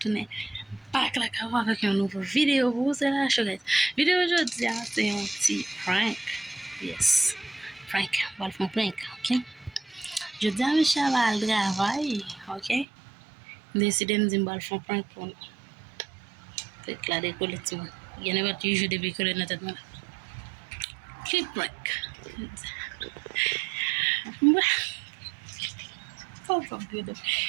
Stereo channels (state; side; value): drops out; left; at 12.9 s